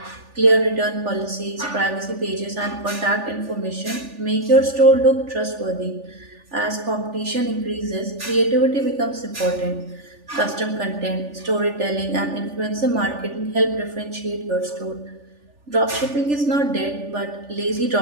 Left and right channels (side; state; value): left; late; 3.4 ms